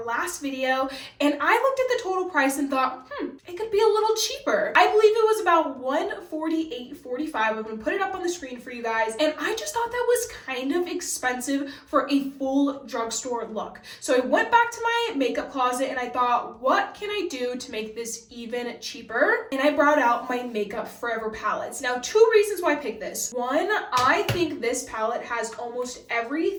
last video. And I looked at the total price and thought, it could be a little cheaper. I believe it was about $148.45. I'm gonna put it up on the screen for you guys. And I just thought that was kind of expensive for a full drugstore look. So I went back to my makeup closet and I thought, what can I do to make this even cheaper? And I brought out my Makeup Forever palettes. Now, 2 reasons why I picked this. 1, I think this palette has almost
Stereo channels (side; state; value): both; identical; correlation 1.00